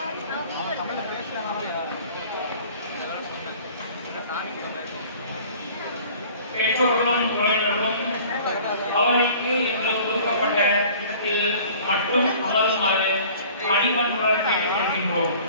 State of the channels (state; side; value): inverted; both; correlation -0.49